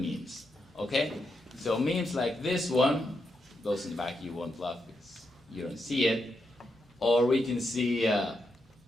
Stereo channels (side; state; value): both; normal; correlation 0.84